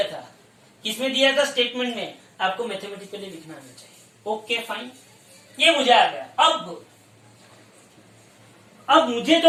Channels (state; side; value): identical; both; correlation 1.00